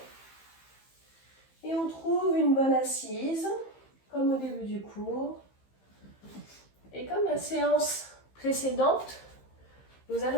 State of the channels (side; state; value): right; late; 15 ms